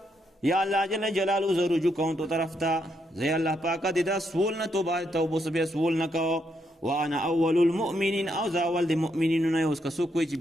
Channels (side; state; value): both; normal; correlation 0.78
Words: یا اللہ جل جلالو زو رجوع کون تو طرف تا زی اللہ پاکا دیدا سول نہ توبہ سبی سول نہ کہو وانا اول المؤمنین او زاول دی مؤمنین نه اوس کسو کوئی